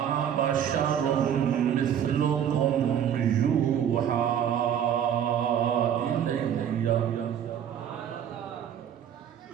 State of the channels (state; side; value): quieter; left; 9.3 dB